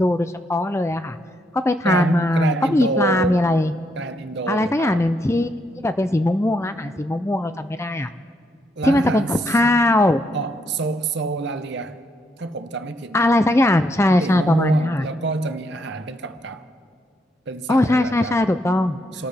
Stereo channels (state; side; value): normal; both; correlation 0.76